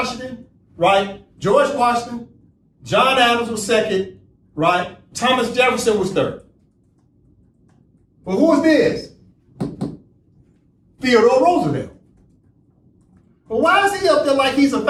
right? George Washington. John Adams was second, right? Thomas Jefferson was third. Well, who is this? Theodore Roosevelt. Well, why is he up there like he's a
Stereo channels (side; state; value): both; identical; correlation 1.00